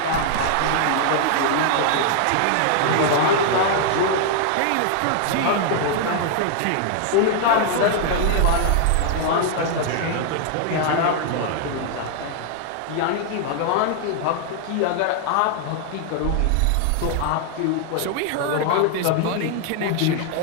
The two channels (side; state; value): both; different; correlation 0.00